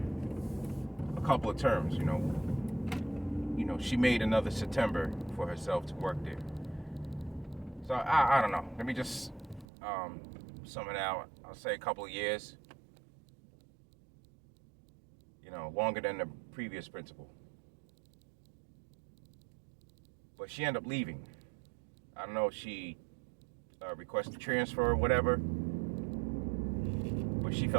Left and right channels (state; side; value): drops out; left; at 9.7 s